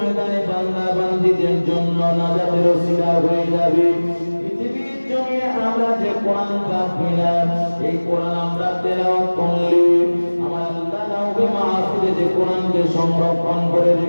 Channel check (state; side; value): inverted; both; correlation -1.00